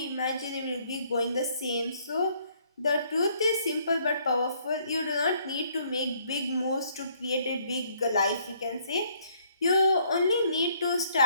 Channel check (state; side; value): inverted; both; correlation -0.66